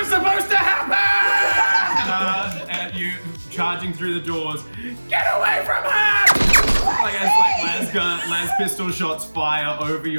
supposed to happen! And you charging through the doors. Get away from her! Like as las pistol shots fire over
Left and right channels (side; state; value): both; inverted; correlation -1.00